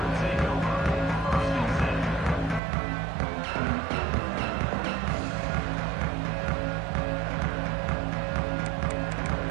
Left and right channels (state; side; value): drops out; left; at 2.6 s